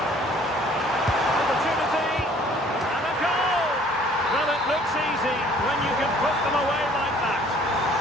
Opportunity! And a goal! Well, it looks easy when you can put them away like that.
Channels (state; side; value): normal; both; correlation 0.56